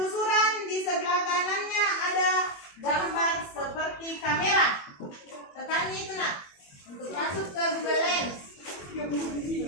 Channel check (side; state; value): right; late; 21 ms